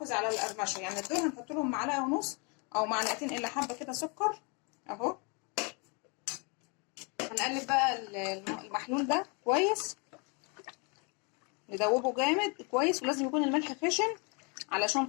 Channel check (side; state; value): right; quieter; 33.0 dB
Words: على القرمشه، يعني دول هنحط لهم معلقه ونص او معلقتين الا حبه كده سكر اهو. هنقلب بقى المحلول ده كويس، ندوبه جامد كويس. ولازم يكون الملح خشن علشان